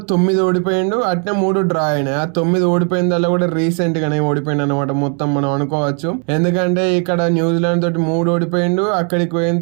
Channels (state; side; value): quieter; left; 39.8 dB